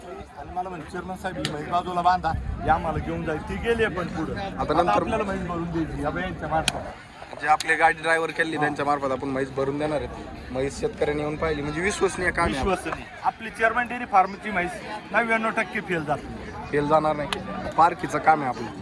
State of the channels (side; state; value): both; identical; correlation 1.00